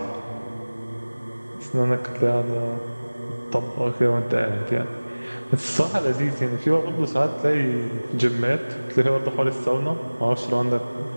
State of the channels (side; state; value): both; inverted; correlation -1.00